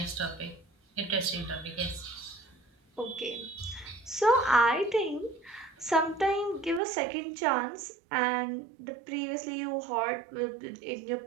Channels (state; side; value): drops out; left; at 6.8 s